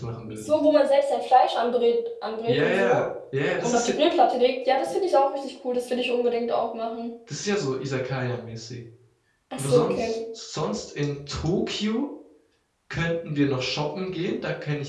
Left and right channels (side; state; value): both; identical; correlation 1.00